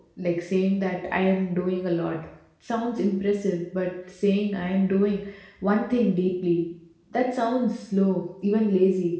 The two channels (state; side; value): identical; both; correlation 1.00